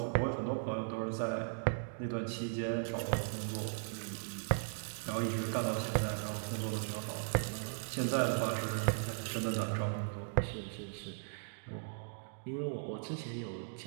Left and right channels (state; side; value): silent; left; digital silence